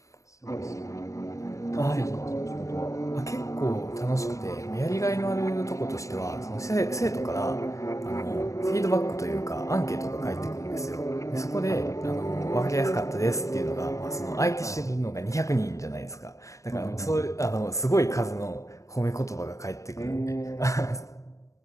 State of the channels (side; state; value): right; late; 0.15 ms